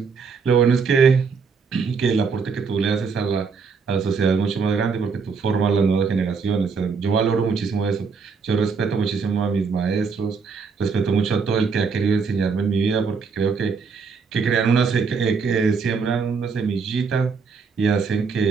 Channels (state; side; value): quieter; left; 5.3 dB